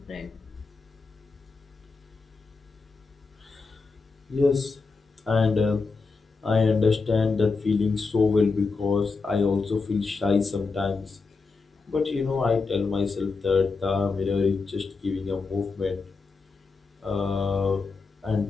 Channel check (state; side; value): quieter; right; 4.3 dB